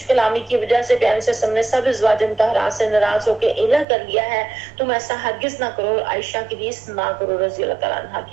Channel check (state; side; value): drops out; left; at 3.9 s